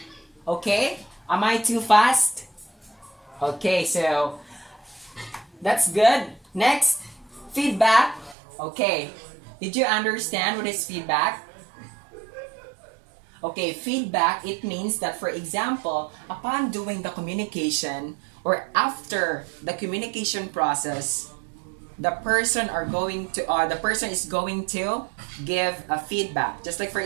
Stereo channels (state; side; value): drops out; left; at 8.3 s